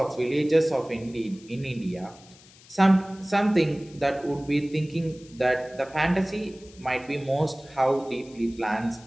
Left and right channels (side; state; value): left; noise; hiss, 24 dB below the sound